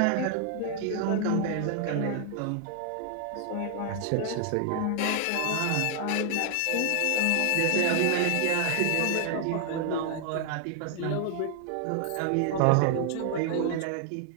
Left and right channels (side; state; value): both; different; correlation 0.00